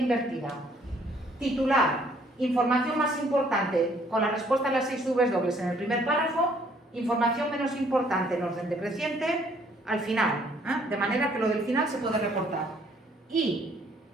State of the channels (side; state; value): both; normal; correlation 0.63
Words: Titular, información más importante con la respuesta a las 6 W en el primer párrafo, información menos importante en orden decreciente al final, de manera que lo del final se puede recortar. Y,